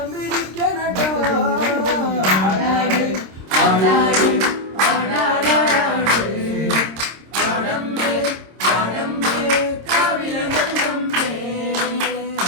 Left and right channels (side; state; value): left; late; 26 ms